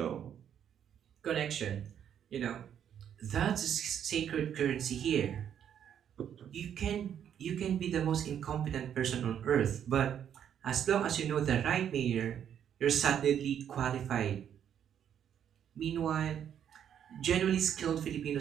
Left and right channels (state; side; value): quieter; left; 9.2 dB